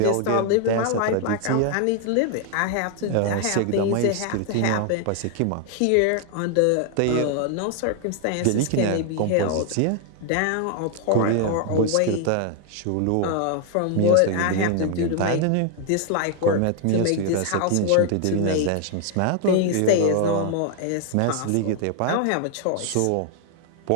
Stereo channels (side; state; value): both; different; correlation 0.00